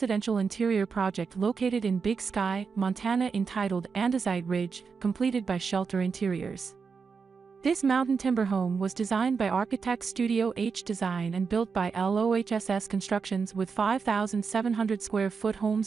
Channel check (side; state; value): left; quieter; 5.4 dB